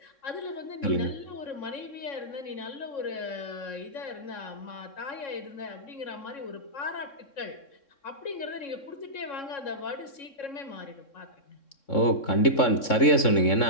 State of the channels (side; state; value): right; late; 3.6 ms